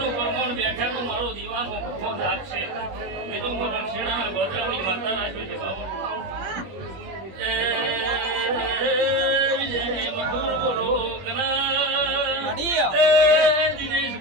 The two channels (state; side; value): late; left; 21 ms